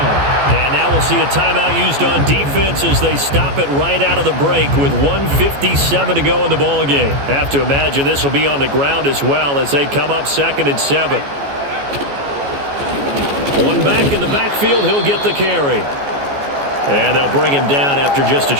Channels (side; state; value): left; late; 14 ms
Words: And now we'll see a timeout used on defense as they stop it right out of the break with 1:57 to go in the ballgame. Have to imagine this will be on the ground as well as they come up 2nd and 7. One back in the backfield, he'll get the carry. And they'll bring him down after just a